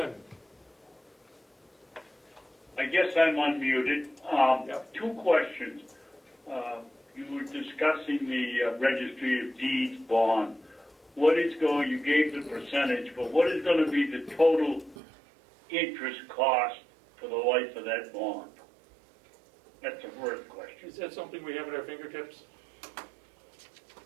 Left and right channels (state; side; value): drops out; left; at 15.0 s